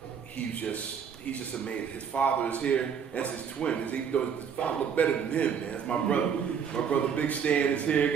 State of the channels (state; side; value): quieter; left; 7.2 dB